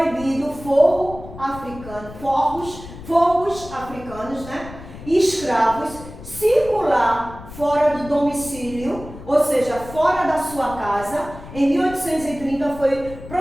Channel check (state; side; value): noise; left; rumble, 15 dB below the sound